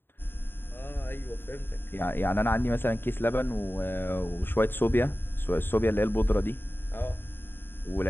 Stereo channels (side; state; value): right; late; 0.10 ms